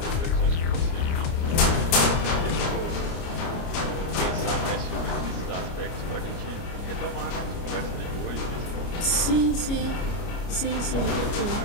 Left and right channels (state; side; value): late; right; 29 ms